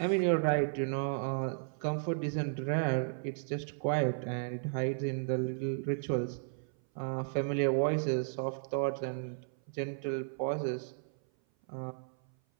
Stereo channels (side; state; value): left; silent; 55 dB below the other